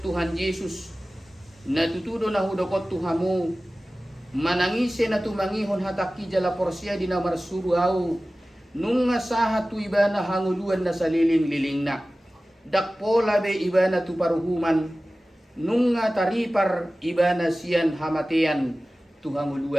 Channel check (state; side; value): normal; both; correlation 0.97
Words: Tuhan Jesus natutudo na hudokot Tuhamu manangise na tumangihon hataki jala porsia di namar suruau nung sahat tu iba na hanguluan na saliling-liling na dakpo labe iba na tuparuhuman nung taripar iba na siyan hamatean